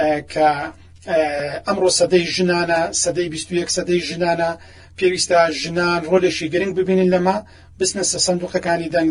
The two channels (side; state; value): both; identical; correlation 1.00